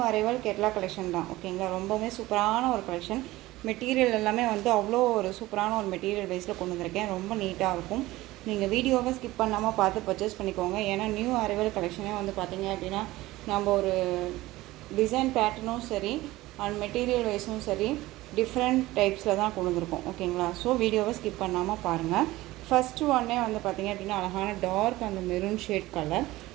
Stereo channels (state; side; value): quieter; left; 18.1 dB